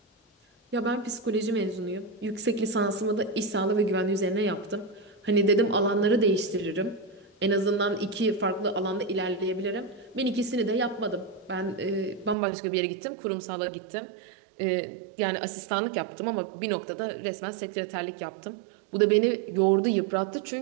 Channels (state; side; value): drops out; left; at 12.4 s